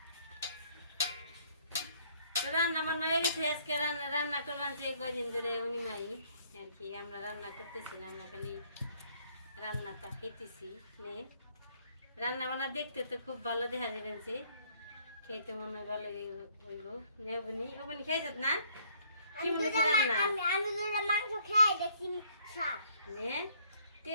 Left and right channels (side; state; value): both; inverted; correlation -0.64